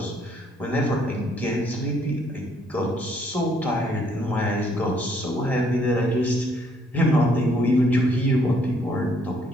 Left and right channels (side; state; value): both; normal; correlation 0.67